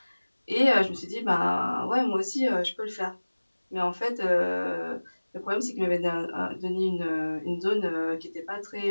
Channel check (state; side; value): inverted; both; correlation -1.00